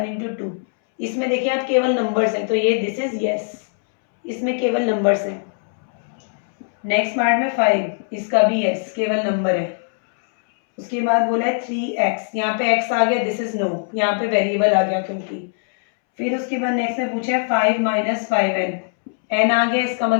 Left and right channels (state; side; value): silent; right; 65 dB below the other